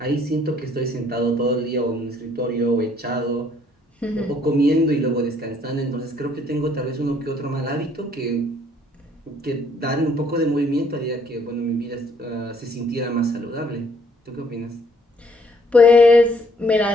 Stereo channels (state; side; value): normal; both; correlation 0.64